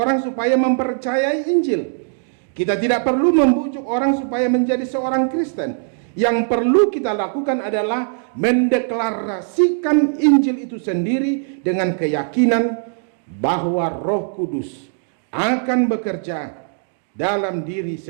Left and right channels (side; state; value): left; silent; digital silence